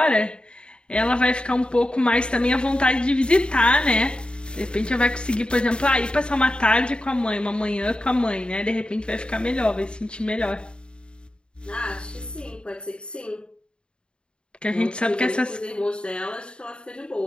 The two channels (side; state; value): right; late; 0.052 ms